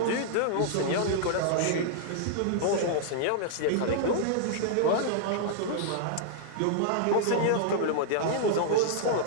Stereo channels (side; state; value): both; different; correlation -0.01